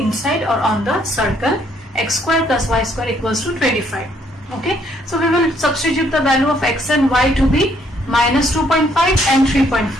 or on the circle x square plus y square equals to 25. Okay, so we will substitute the value of x and y to be minus 2.5 and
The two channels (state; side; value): normal; both; correlation 0.68